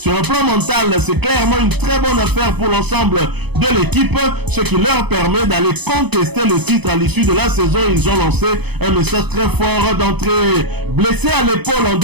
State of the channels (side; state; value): left; late; 0.98 ms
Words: un plan mental, c'est clairement une très bonne affaire pour l'ensemble de l'équipe, ce qui leur permet d'aller contester le titre à l'issue de la saison. Ils ont lancé un message très fort d'entrée. Blessé à l'épaule en